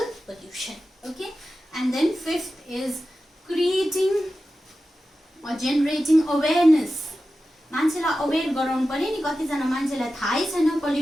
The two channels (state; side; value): normal; both; correlation 0.93